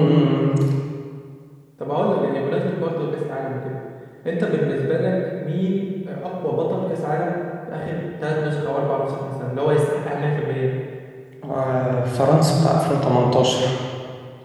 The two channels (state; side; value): identical; both; correlation 1.00